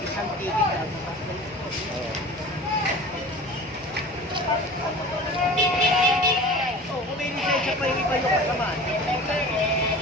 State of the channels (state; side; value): normal; both; correlation 0.38